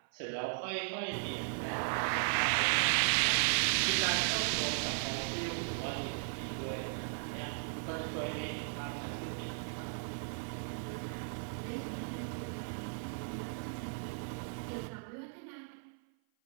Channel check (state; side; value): silent; left; 53 dB below the other